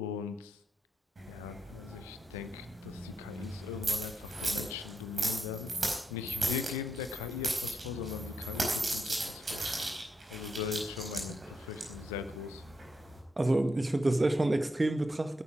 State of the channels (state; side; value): normal; both; correlation 0.82